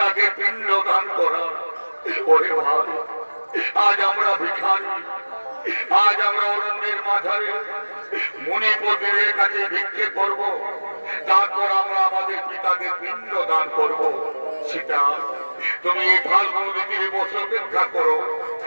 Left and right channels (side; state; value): both; inverted; correlation -1.00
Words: পিণ্ড দান করা। ওরে ভাই আজ আমরা ভিখারি, আজ আমরা অরণ্যের মাঝারে মুনিপতির কাছে ভিক্ষে করব, তারপর আমরা আমাদের পিতাকে পিণ্ড দান করব। সেটা তুমি এই ফাল্গুন ঋতুতে বসে অপেক্ষা করো,